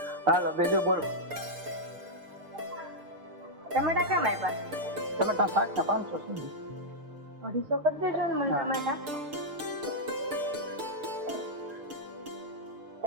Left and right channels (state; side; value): late; left; 6.6 ms